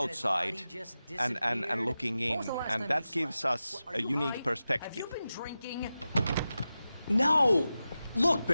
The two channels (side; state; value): both; inverted; correlation -0.93